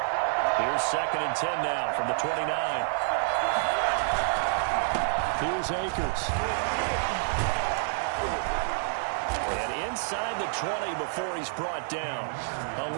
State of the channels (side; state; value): left; silent; digital silence